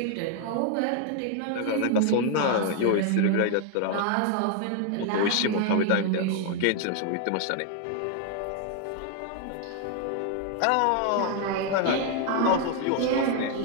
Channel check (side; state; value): both; different; correlation 0.00